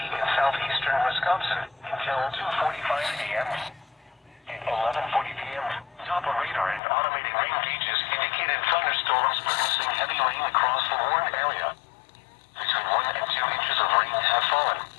in southeastern Wisconsin until 2:45 a.m. At 11:40 p.m., Doppler radar and automated rain gauges indicated thunderstorms producing heavy rain across the warned area. Between 1 and 2 inches of rain have fallen.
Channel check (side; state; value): right; drops out; at 6.8 s